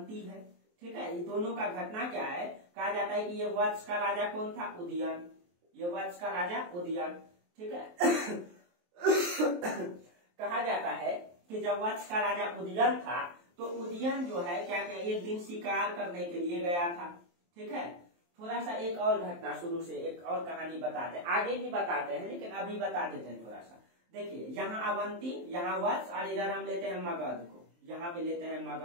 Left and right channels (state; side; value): late; left; 23 ms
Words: है। ठीक है, ये दोनों का घटना क्या है, कहा जाता है कि ये वत्स का राजा कौन था, उदयन। ये वत्स का राजा उदयन। ठीक है कहा जाता है कि जब वत्स का राजा उदयन था तो उदयन जो है क्या क्या एक दिन शिकार करने के लिए गया था। ठीक है, थोड़ा सा एक और घटना शुरू से एक और कहानी बताते हैं, आगे भी बताते हैं लेकिन अभी बता देते हैं थोड़ा सा। देखिए यहाँ अवंती, यहाँ वत्स, और इधर हम लेते हैं मगध को, यहाँ पे लेते हैं